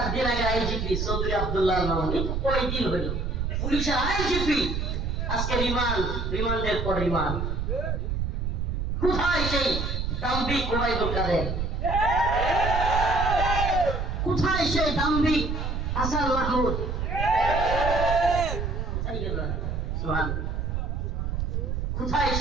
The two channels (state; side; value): noise; right; rumble, 1 dB below the sound